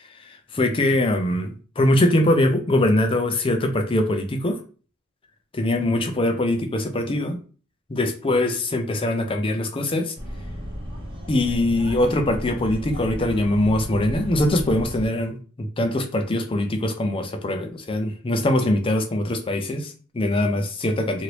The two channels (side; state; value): both; normal; correlation 0.68